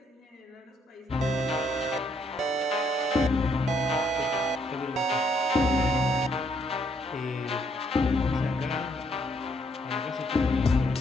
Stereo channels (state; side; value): normal; both; correlation 0.71